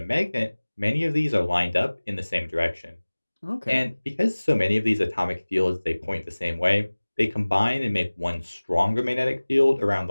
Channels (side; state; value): both; inverted; correlation -1.00